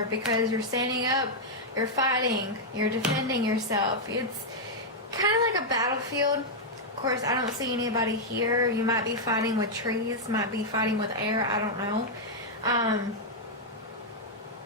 because you're standing up, you're fighting, you're defending yourself. It's kind of like a battlefield. Of course, I don't see anybody here. You might be fighting with trees, might be fighting with air, I don't know.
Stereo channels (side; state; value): both; normal; correlation -0.04